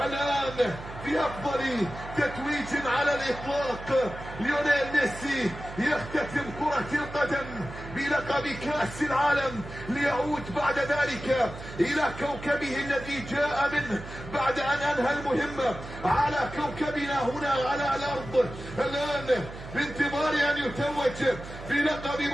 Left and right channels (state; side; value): noise; right; hum, 13 dB below the sound